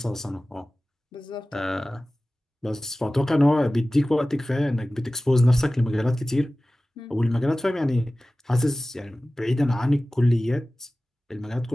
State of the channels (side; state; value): both; normal; correlation 0.97